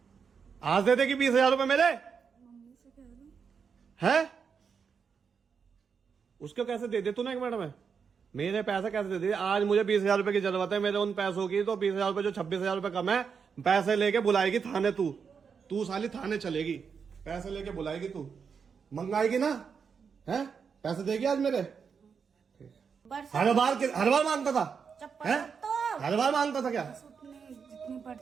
आज दे देगी 20,000 रुपए मेरे? है? उसको कैसे दे दे तूने 1 मिनट में? मेरे पैसे कैसे दे दे? आज मुझे 20,000 रुपए की जरूरत है मेरे उन पैसों की। तो 20,000 रुपए जो 26,000 रुपए कम है, पैसे लेके बुलाएगी थाने। तू साली थाने चलेगी, पैसे लेके बुलाएगी, तू मंगाएगी ना? है? पैसे देगी आज मेरे? हर बार मांगता था? है? हर बार मांगता था क्या? उतनी जितनी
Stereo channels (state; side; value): quieter; left; 6.2 dB